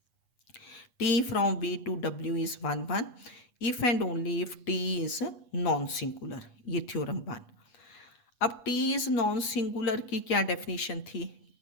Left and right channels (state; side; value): late; right; 8.3 ms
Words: t from v to w is 1 1 if and only if t is non singular, ये थ्योरम 1। अब t इज नॉन सिंगुलर की क्या डेफिनेशन थी?